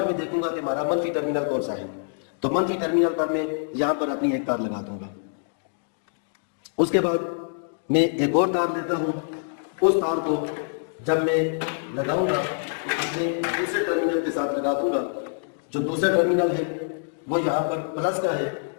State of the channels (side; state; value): right; silent; digital silence